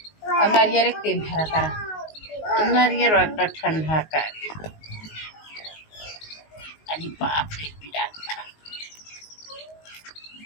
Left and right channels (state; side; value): late; right; 19 ms